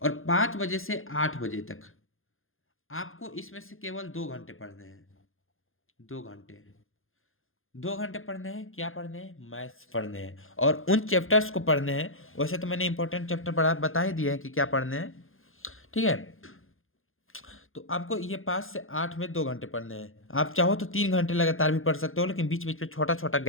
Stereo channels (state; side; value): late; right; 0.60 ms